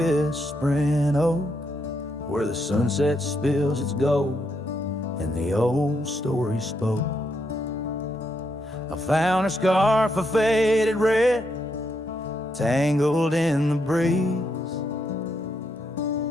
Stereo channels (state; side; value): normal; both; correlation 0.79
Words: oak, where the sunset spills its gold and the old story spoke. I found a scarf of faded red, tangled in the breeze,